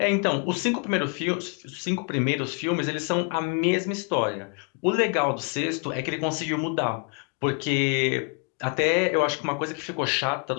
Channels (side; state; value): right; quieter; 36.1 dB